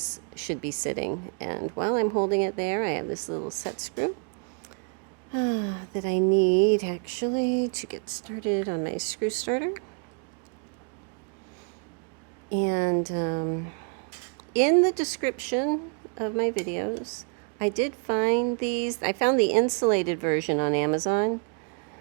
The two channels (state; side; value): quieter; left; 39.7 dB